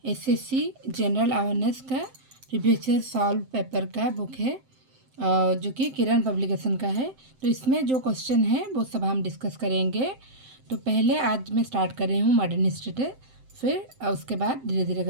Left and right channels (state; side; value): late; left; 7.7 ms